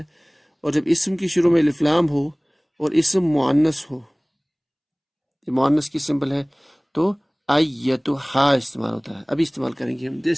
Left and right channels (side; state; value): both; identical; correlation 1.00